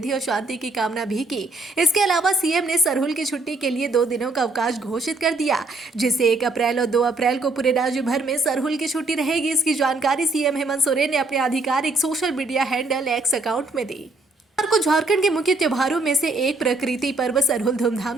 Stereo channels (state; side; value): quieter; left; 3.2 dB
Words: और शांति की कामना भी की। इसके अलावा सीएम ने सरहुल की छुट्टी के लिए 2 दिनों का अवकाश घोषित कर दिया, जिससे 1 अप्रैल और 2 अप्रैल को पूरे राज्य भर में सरहुल की छुट्टी रहेगी। इसकी जानकारी सीएम हेमंत सोरेन ने अपने आधिकारिक social media handle x account में दी। को झारखंड के मुख्य त्योहारों में से एक प्रकृति पर्व सरहुल धूमधाम